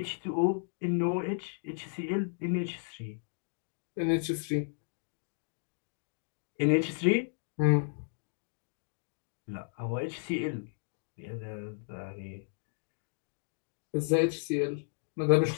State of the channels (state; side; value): silent; right; digital silence